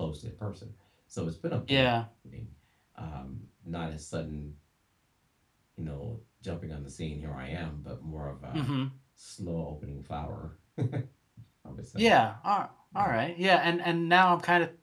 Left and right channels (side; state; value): both; identical; correlation 1.00